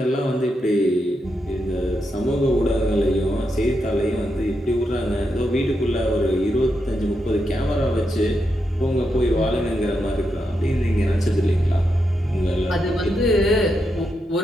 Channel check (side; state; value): both; normal; correlation 0.84